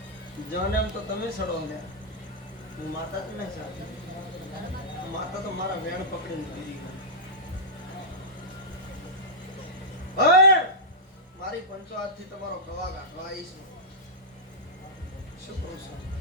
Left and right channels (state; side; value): normal; both; correlation -0.11